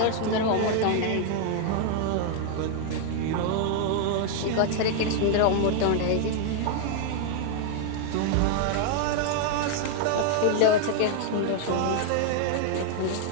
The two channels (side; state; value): both; different; correlation 0.00